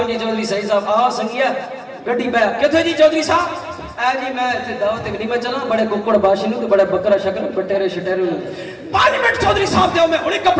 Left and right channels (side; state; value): both; identical; correlation 1.00